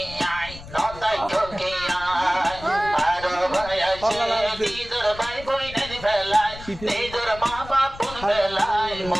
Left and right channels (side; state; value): left; noise; rumble, 15 dB below the sound